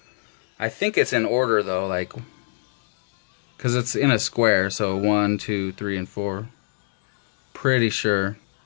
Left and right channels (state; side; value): silent; right; digital silence